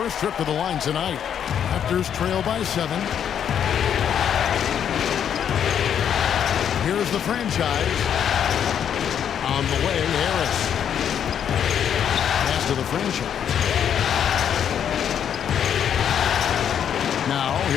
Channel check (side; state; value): right; quieter; 8.8 dB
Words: trip to the line tonight. Raptors trail by 7. Here's the franchise. On the way, Harris. Pass to the franchise. Now,